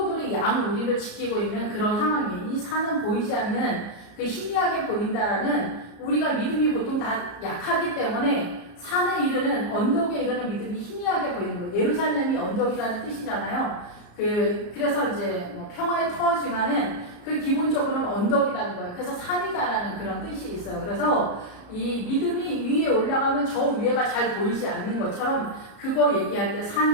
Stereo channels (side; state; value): right; late; 34 ms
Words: 양우리를 지키고 있는 그런 상황이에요. 이 산은 보이지 않는 그 희미하게 보인다라는 우리가 믿음이 보통 다 약하기 때문에 산에 이르는 언덕에 이르는 믿음이 희미하게 보이는 거예요. 예루살렘이 언덕이라는 뜻이잖아요. 그래서 이제 평화의 터지만은 그 기본적으로는 언덕이라는 거예요. 그래서 산이다라는 그런 뜻이 있어요. 그래서 이 믿음이 위에 올라가면 저 위에가 잘 보이지 않는 것처럼 그거 얘기할 때